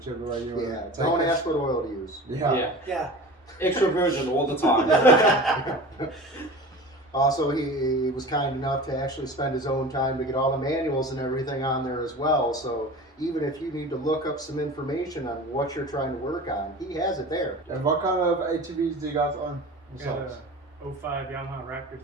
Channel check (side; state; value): both; normal; correlation 0.36